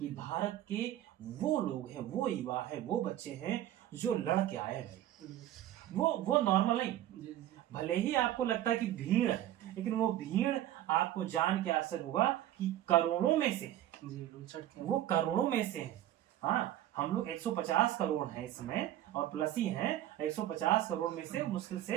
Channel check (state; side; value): quieter; left; 13.0 dB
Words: भारत के वो लोग हैं, वो युवा है, वो बच्चे हैं जो लड़ के आए भाई, वो नॉर्मल नहीं। भले ही आपको लगता है कि भीड़ है, लेकिन वो भीड़ आपको जान के असर होगा कि करोड़ों में से, वो करोड़ों में से है। हाँ, हम लोग 150 करोड़ हैं इसमें और प्लस ही हैं। 150 करोड़ में से मुश्किल से